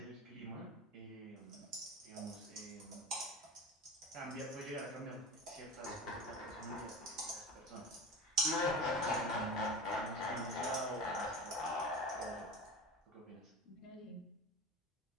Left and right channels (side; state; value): both; normal; correlation 0.31